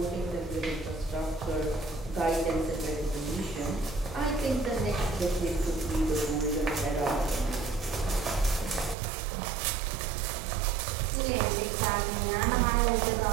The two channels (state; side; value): drops out; left; at 9.0 s